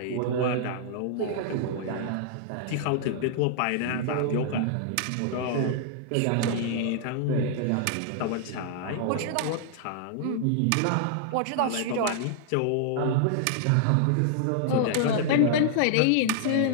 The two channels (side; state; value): both; different; correlation -0.01